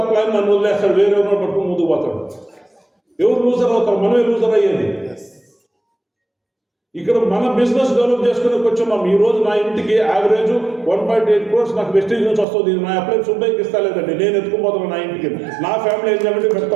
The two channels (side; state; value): left; drops out; at 12.5 s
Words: అప్లైన్ నన్ను వదిలేస్తాడు, వేరే ఎవరో పట్టుకుని ముందుకు పోతాడు. ఎవరు లూజర్ అవుతారు? మనమే లూజర్ అయ్యేది. ఇక్కడ మన బిజినెస్ డెవలప్ చేసుకునే వచ్చున్నాం. ఈ రోజు నా ఇంటికి యావరేజ్ 1.8 crores నాకు వెస్టేజ్ నుంచి వస్తుంది. నా అప్లైన్ సుబ్బైకి ఇస్తా లేదండి, నేను ఎత్తుకుపోతాను నా ఇంటికి. నా ఫ్యామిలీ ఎంజాయ్మెంట్ పెడతా